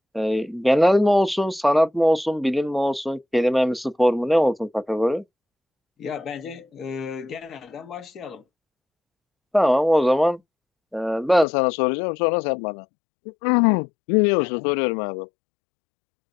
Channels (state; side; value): drops out; right; at 11.5 s